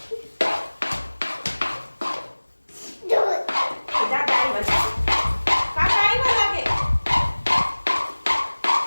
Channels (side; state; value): both; inverted; correlation -1.00